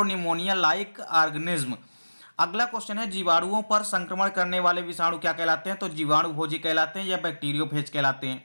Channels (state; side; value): inverted; both; correlation -1.00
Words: लाइक ऑर्गेनिज्म। अगला क्वेश्चन है जीवाणुओं पर संक्रमण करने वाले विषाणु क्या कहलाते हैं? तो जीवाणु भोजी कहलाते हैं या बैक्टीरियोफेज कहलाते हैं।